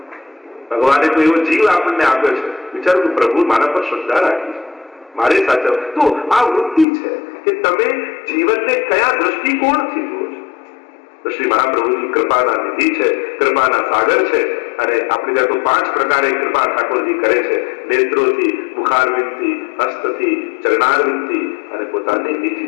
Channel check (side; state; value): right; drops out; at 6.9 s